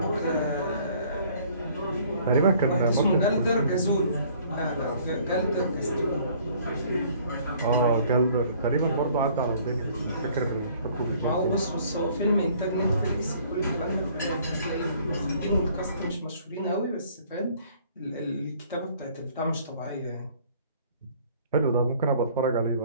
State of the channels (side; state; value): both; inverted; correlation -0.57